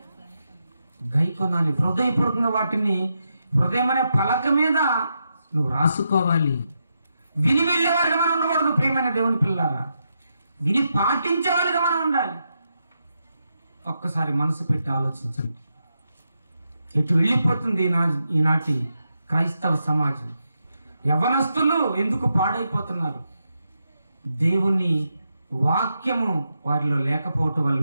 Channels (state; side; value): inverted; both; correlation -0.84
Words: గైకొనాలి. హృదయపూర్వకంగా వాటిని హృదయం అనే పలక మీద నువ్వు రాసుకోవాలి. విని వెళ్ళేవారిగా మనం ఉండకూడదు. ప్రియమైన దేవుని పిల్లారా, విని పాటించేవాళ్ళుగా మనం ఉండాలి. ఒక్కసారి మనసు పెట్టి ఆలోచించండి. ఎటు వెళ్ళిపోతుంది ఈనాటి క్రైస్తవ సమాజం? యవ్వనస్తులు ఎందుకు పాడైపోతున్నారు? దేవుని వాక్యము వారిలో లేకపోవటం